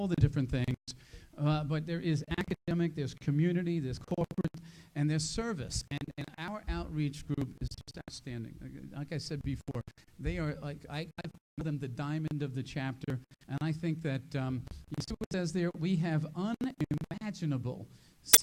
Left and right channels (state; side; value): identical; both; correlation 1.00